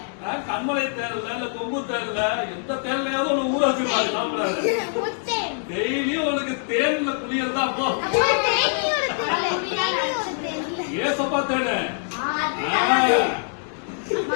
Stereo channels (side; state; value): right; silent; 63 dB below the other